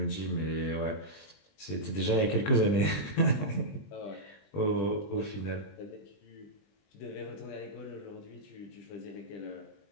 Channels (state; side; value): late; right; 20 ms